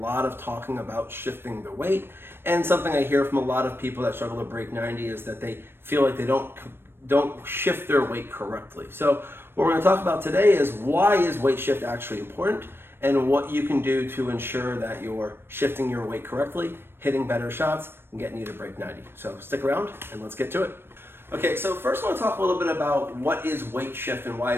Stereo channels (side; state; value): left; late; 0.11 ms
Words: of talking about shifting the weight. And something I hear from a lot of people that struggle to break 90 is that they feel like they don't shift their weight correctly. So what we're going to talk about today is why is weight shift actually important, and what you can do to ensure that you're shifting your weight correctly, hitting better shots, and getting you to break 90. So stick around and let's get to it. Okay, so first I want to talk a little bit about what is weight shift and why